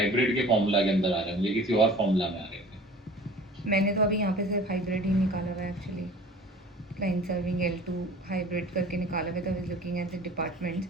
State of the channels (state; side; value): normal; both; correlation 0.45